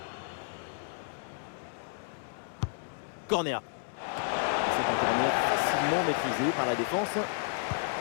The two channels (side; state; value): right; silent; 57 dB below the other